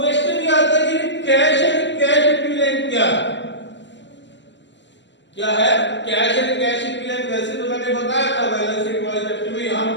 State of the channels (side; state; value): right; late; 0.53 ms